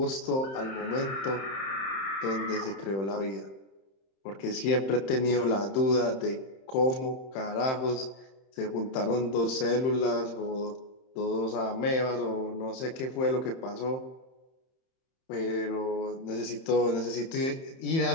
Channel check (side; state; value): right; late; 31 ms